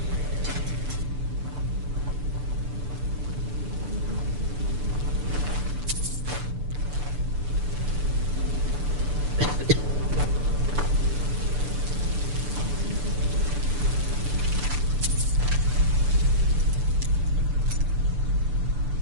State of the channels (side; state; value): left; late; 6.9 ms